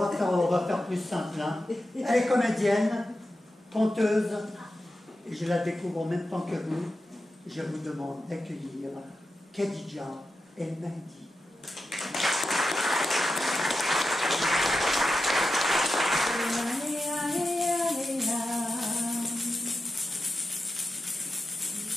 va faire plus simple. Hein. Elle est comédienne, conteuse, et je la découvre en même temps que vous. Je vous demande d'accueillir Khadija El Mahdi.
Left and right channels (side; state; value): both; normal; correlation 0.90